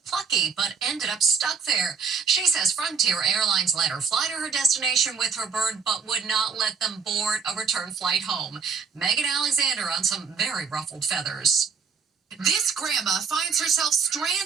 Plucky, but ended up stuck there. She says Frontier Airlines let her fly to her destination with her bird, but would not let them board a return flight home. Megan Alexander on some very ruffled feathers. This grandma finds herself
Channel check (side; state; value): left; quieter; 5.8 dB